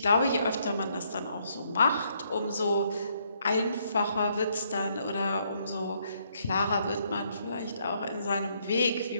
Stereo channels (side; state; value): both; inverted; correlation -0.72